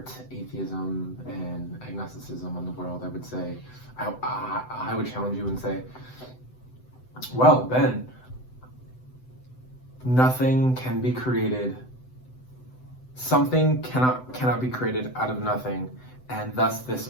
atheism and agnosticism on the world, I would say, I would challenge you and say, well, Ben, nothing can be created. Something cannot be created out of nothing, and thus this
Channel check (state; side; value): late; right; 7.9 ms